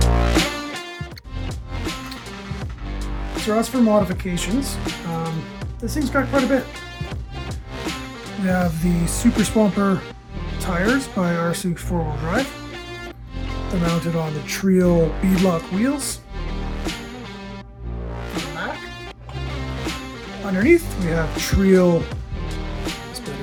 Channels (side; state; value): both; identical; correlation 1.00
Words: So as for modifications, this thing's got quite a bit. We have the Super Swamper tires by RC 4-wheel drive. They're mounted on the Treal beadlock wheels. On the back. Underneath we have Treal